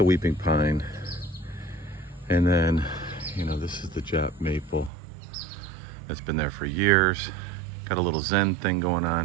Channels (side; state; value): left; drops out; at 4.9 s